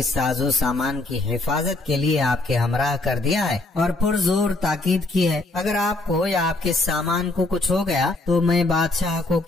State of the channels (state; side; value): quieter; right; 3.1 dB